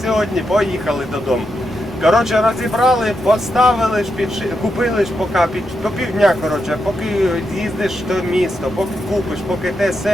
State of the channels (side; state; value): both; normal; correlation 0.84